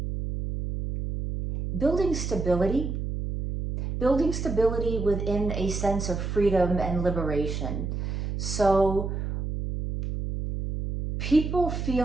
building stability within a sense of freedom and liberation. So people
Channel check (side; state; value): right; noise; hum, 3 dB below the sound